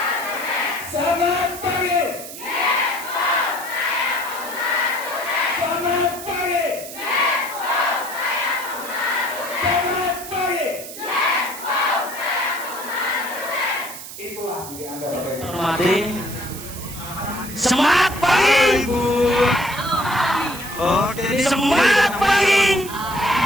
Selamat pagi! Selamat pagi! Selamat pagi! Tim. Semangat pagi. Semangat pagi.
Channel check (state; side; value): noise; right; hiss, 12 dB below the sound